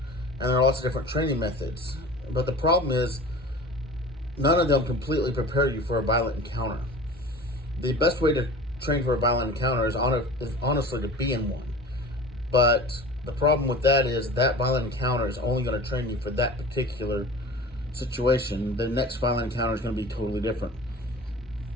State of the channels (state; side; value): normal; both; correlation 0.38